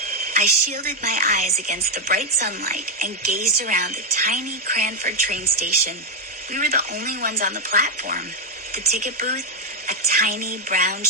I shielded my eyes against the bright sunlight and gazed around the tiny Cranford train station. We were the only ones on the platform. The ticket booth, a tiny brown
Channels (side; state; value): both; normal; correlation 0.02